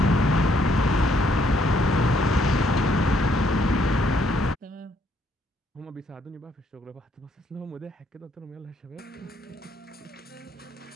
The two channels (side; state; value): both; normal; correlation 0.70